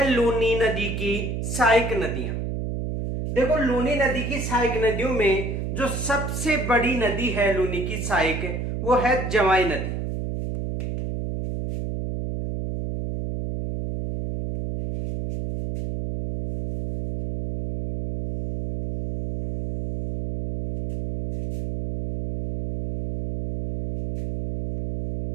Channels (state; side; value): noise; right; hum, 4 dB below the sound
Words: लूनी नदी की सहायक नदियां। देखो, लूनी नदी की सहायक नदियों में जो सबसे बड़ी नदी है लूनी की सहायक, वो है जवाई नदी।